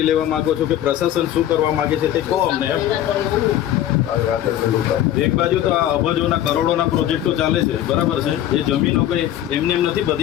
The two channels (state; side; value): quieter; right; 12.1 dB